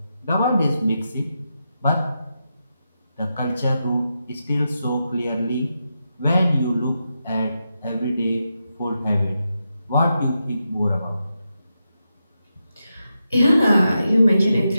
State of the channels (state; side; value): inverted; both; correlation -0.87